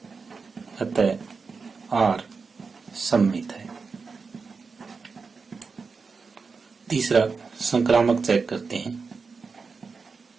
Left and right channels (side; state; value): left; quieter; 4.8 dB